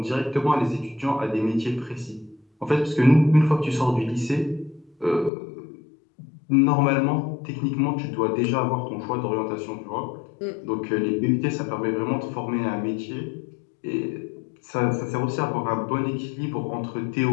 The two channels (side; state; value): right; drops out; at 5.3 s